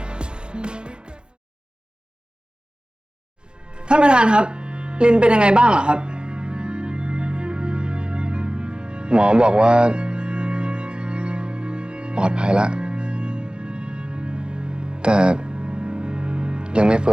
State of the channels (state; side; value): late; left; 0.049 ms